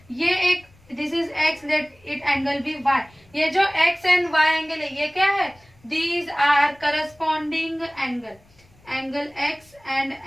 ये एक, this is X, let it angle be Y, ये जो एक्स एंड वाई एंगल है ये क्या है, these are corresponding angle, angle x and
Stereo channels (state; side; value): noise; left; rumble, 30 dB below the sound